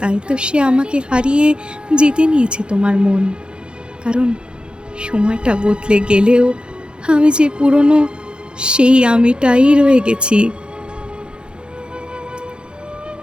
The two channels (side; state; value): left; late; 0.052 ms